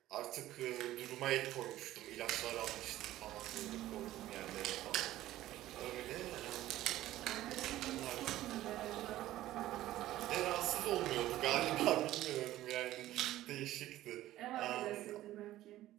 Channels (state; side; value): quieter; left; 14.8 dB